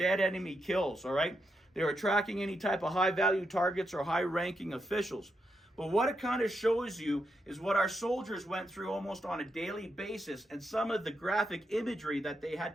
enemy kills, all right? They were tracking any type of high-value targets or high-ranking officials. But what it kind of shows you is what our soldiers went through almost on a daily basis and some of the graphic imagery that they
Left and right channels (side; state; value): both; normal; correlation 0.83